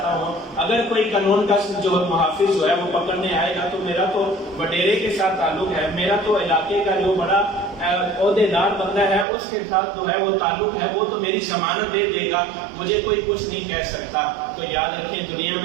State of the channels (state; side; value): drops out; left; at 9.2 s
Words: ہوں، اگر کوئی قانون کا جو محافظ جو ہے وہ پکڑنے آئے گا تو میرا تو وڈیرے کے ساتھ تعلق ہے، میرا تو علاقے کا جو بڑا عہدے دار بندہ ہے اس کے ساتھ جو ہے وہ تعلق ہے، وہ تو میری ضمانت دے دے گا، مجھے کوئی کچھ نہیں کہہ سکتا۔ تو یاد رکھیں دنیا